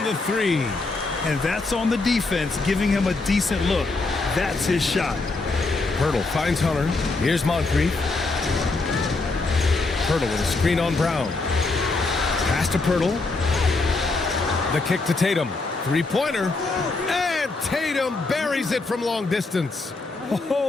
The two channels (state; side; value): quieter; right; 3.5 dB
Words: the 3. And that's on the defense, giving him a decent look. That's his shot. Pirtle finds Hunter. Here's Moncrief. Pirtle with a screen on Brown. Pass to Pirtle. The kick to Tatum. 3-pointer. And Tatum buries it from long distance.